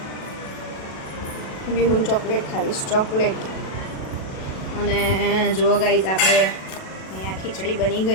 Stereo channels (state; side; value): late; right; 37 ms